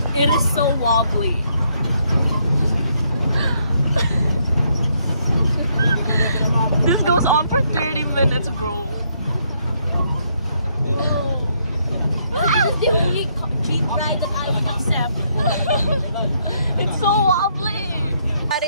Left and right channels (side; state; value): both; inverted; correlation -0.73